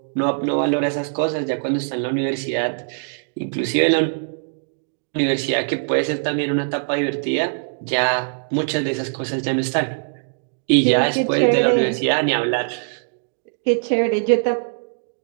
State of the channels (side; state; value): left; silent; digital silence